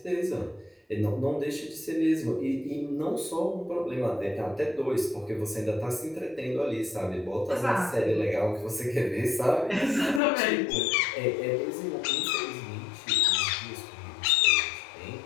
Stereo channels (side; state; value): right; drops out; at 10.2 s